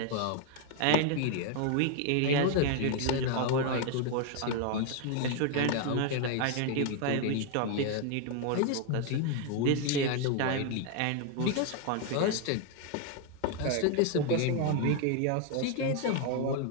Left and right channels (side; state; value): both; different; correlation 0.01